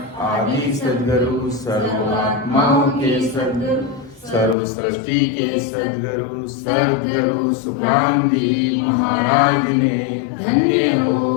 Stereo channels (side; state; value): right; drops out; at 4.5 s